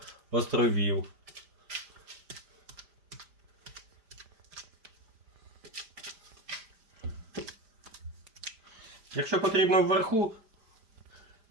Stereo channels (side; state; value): left; late; 5.0 ms